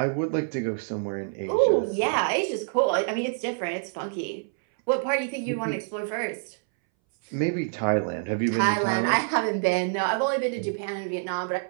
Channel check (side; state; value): left; silent; 61 dB below the other